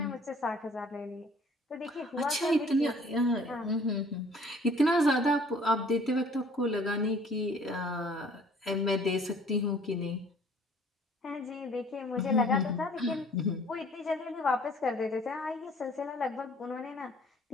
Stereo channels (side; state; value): both; normal; correlation 0.55